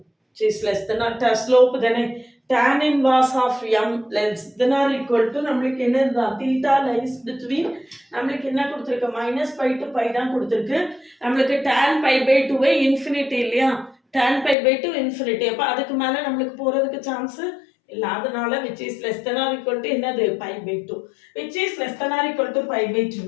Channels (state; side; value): drops out; right; at 14.6 s